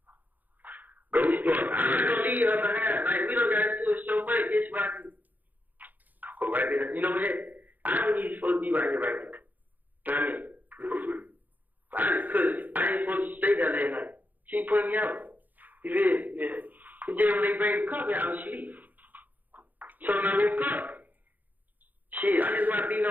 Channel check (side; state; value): left; late; 0.083 ms